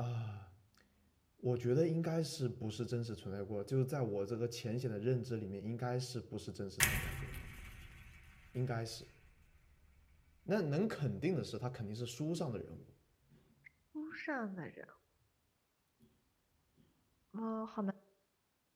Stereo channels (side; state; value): both; identical; correlation 1.00